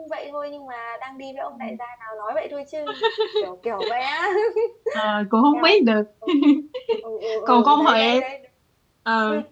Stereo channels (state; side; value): identical; both; correlation 1.00